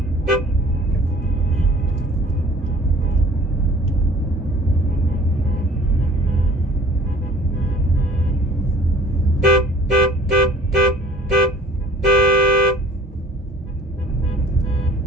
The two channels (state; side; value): normal; both; correlation 0.48